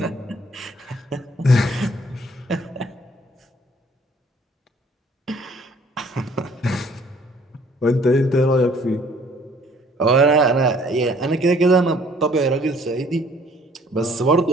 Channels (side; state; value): both; normal; correlation 0.59